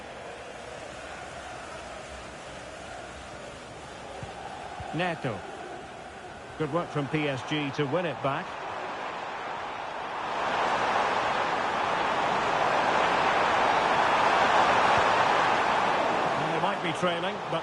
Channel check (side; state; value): both; identical; correlation 1.00